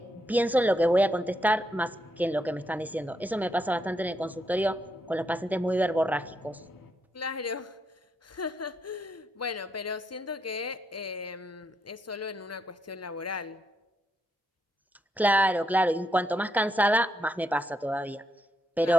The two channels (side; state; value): both; normal; correlation 0.79